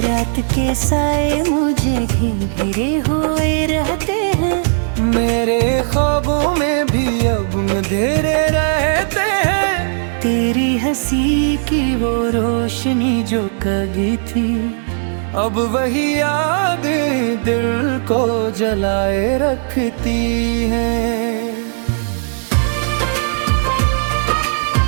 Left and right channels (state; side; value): silent; left; 68 dB below the other